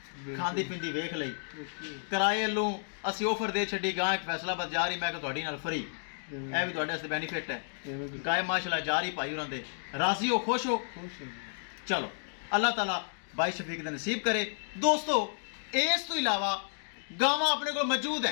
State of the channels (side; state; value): right; silent; digital silence